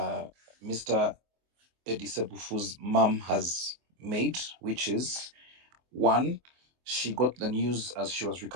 Mr. Edi Sebufu's mum has made, which is 1, she got the news as she was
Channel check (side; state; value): left; late; 24 ms